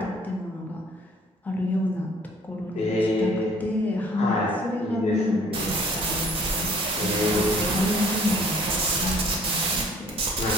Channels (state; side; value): normal; both; correlation 0.55